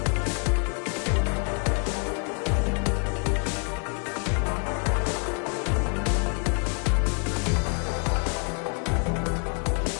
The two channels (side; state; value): right; quieter; 39.9 dB